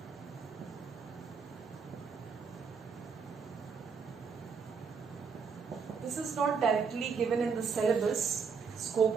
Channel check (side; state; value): left; quieter; 5.7 dB